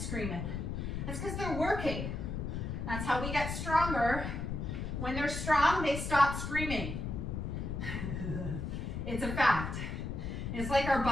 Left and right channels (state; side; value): noise; left; rumble, 4 dB below the sound